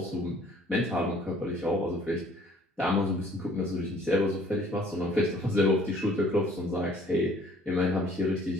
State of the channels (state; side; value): normal; both; correlation 0.57